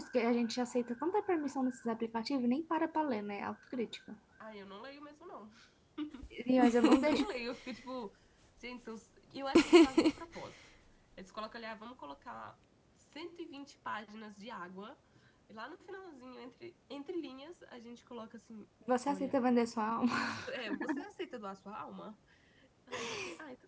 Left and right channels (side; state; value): both; identical; correlation 1.00